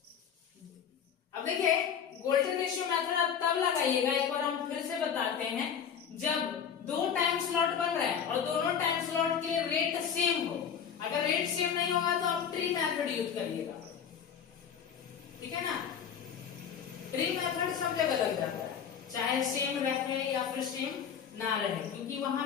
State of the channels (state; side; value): quieter; right; 7.7 dB